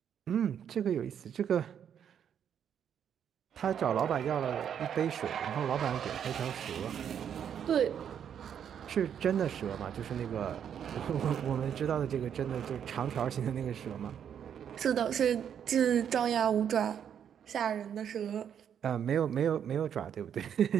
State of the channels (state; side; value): quieter; left; 8.6 dB